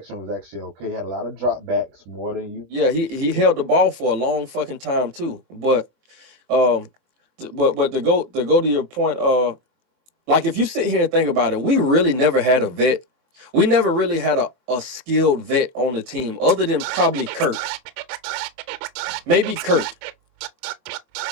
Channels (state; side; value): late; left; 23 ms